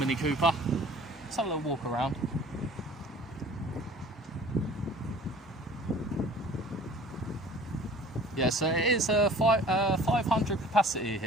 Cooper. Let's have a little walk around. Yeah, so it is a 500 capacity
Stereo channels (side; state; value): both; normal; correlation 0.48